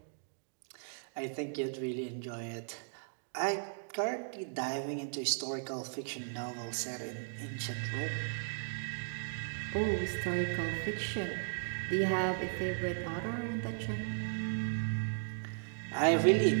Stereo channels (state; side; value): silent; left; digital silence